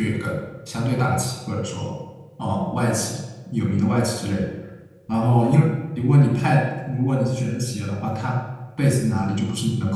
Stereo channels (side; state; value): both; identical; correlation 1.00